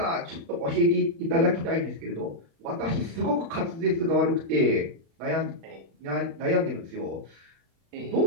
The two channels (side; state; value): left; late; 35 ms